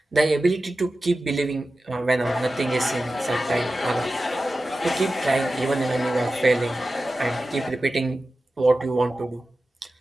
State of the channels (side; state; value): both; normal; correlation 0.94